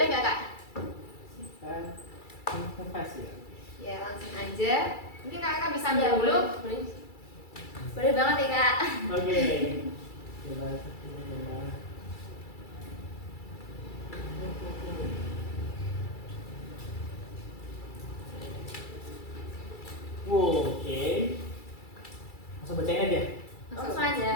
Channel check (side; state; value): right; late; 2.3 ms